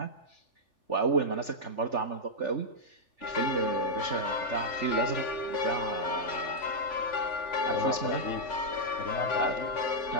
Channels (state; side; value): late; right; 3.4 ms